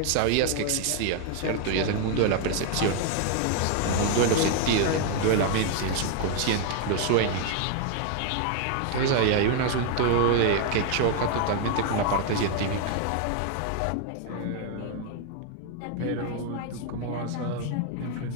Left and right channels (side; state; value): both; different; correlation 0.00